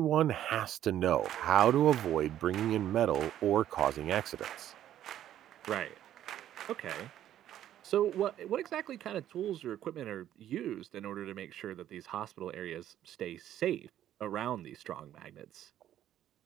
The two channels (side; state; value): left; quieter; 11.7 dB